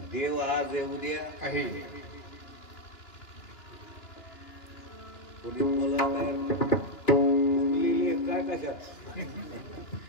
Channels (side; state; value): right; late; 2.9 ms